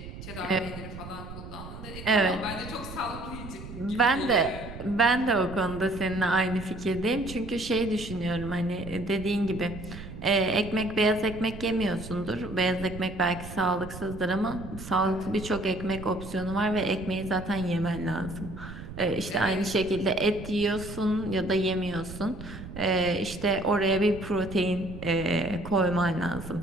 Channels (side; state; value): right; noise; rumble, 12 dB below the sound